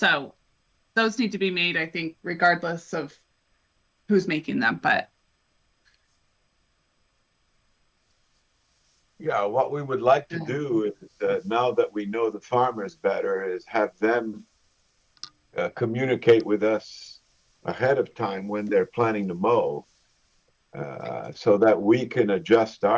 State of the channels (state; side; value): identical; both; correlation 1.00